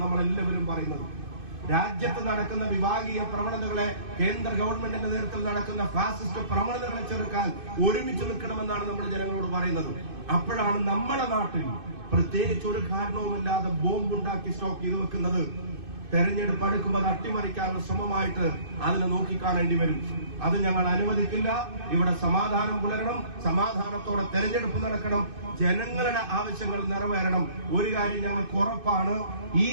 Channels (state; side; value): late; left; 2.6 ms